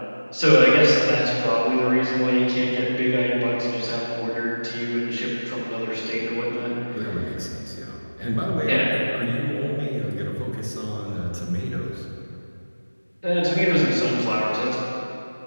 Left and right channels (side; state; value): both; inverted; correlation -1.00